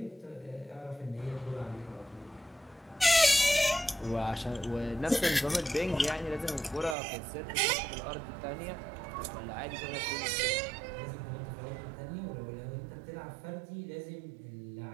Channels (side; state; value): left; drops out; at 7.0 s